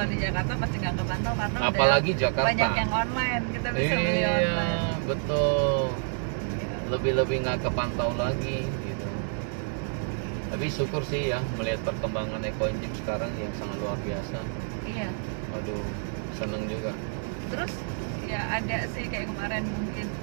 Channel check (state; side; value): silent; left; 59 dB below the other